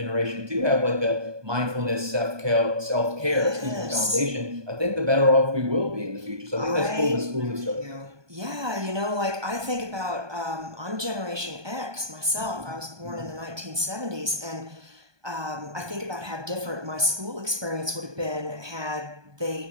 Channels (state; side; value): late; left; 1.2 ms